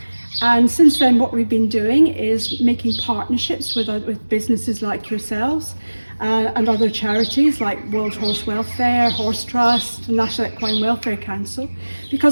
And since then, what we've been doing is making partnerships with businesses like yourselves and other charities like World Horse Welfare, Horse Trust, and National Equine Welfare Council.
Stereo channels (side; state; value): both; inverted; correlation -1.00